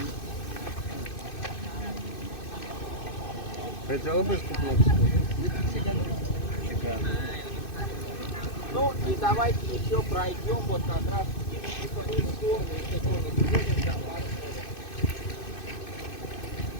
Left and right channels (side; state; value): right; late; 2.6 ms